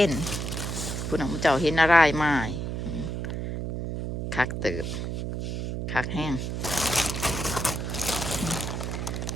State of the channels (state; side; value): noise; right; hum, 3 dB below the sound